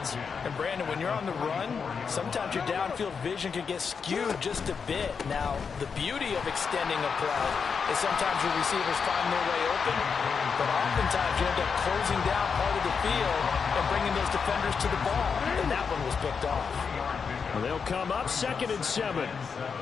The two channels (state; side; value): quieter; right; 5.9 dB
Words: And Brandon, when you're on the run, sometimes your downfield vision can get skewed just a bit. Now, the beauty of extending a play is sometimes your receivers find their way open, but oftentimes you end up closing down part of the field and bringing those defenders to the ball, and that one was picked off. Well, they'll come up 2nd and 7.